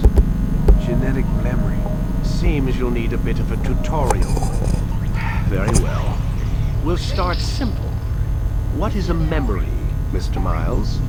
genetic memory. Seems you'll need a bit of a tutorial. Very well. We'll start simple. What is a memory, Mr. Miles?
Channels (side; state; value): both; identical; correlation 1.00